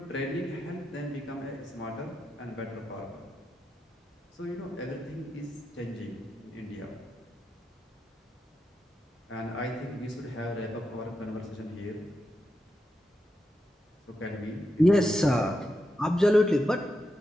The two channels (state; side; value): normal; both; correlation 0.86